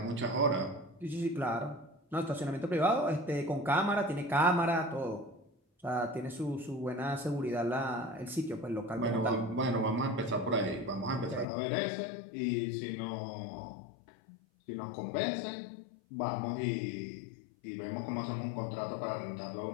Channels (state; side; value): drops out; right; at 11.5 s